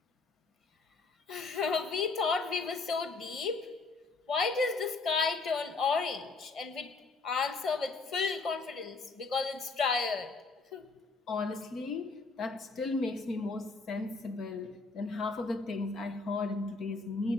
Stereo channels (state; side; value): quieter; right; 4.0 dB